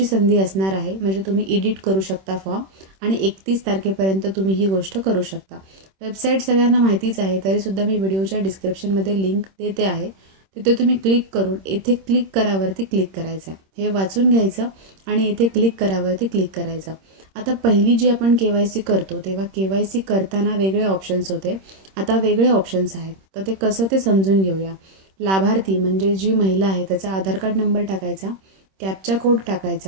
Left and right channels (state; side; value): late; left; 26 ms